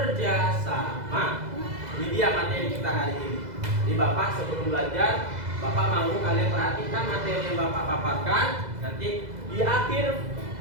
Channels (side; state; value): left; late; 2.0 ms